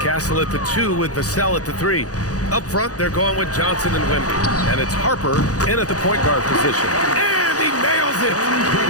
Castle at the 2 with Vassell at the 3. Up front, they're going with Johnson and Wemby. And it's Harper in at the point guard position. And he nails it!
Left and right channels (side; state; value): right; late; 0.67 ms